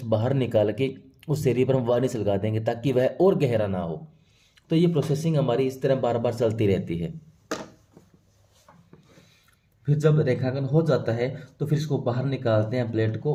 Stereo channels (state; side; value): identical; both; correlation 1.00